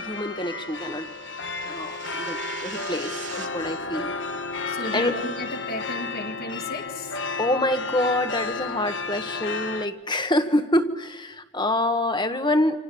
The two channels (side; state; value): both; normal; correlation 0.40